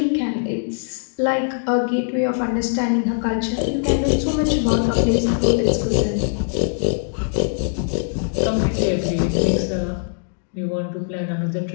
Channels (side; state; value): right; silent; digital silence